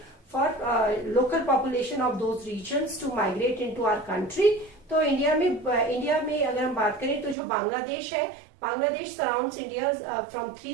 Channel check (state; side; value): drops out; left; at 7.4 s